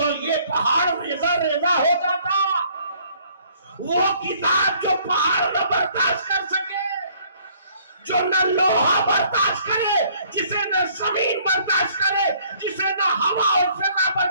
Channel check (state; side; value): inverted; both; correlation -0.61